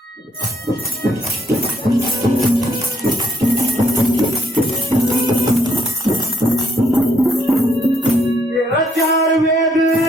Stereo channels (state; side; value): normal; both; correlation 0.71